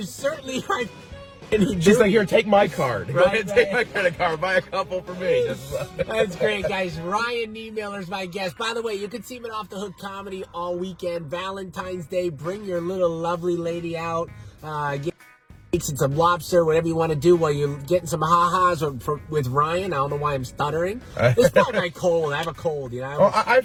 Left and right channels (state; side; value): identical; both; correlation 1.00